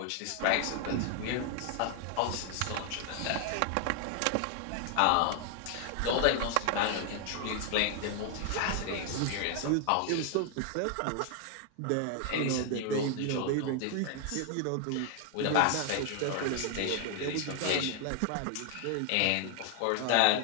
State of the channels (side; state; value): both; different; correlation 0.00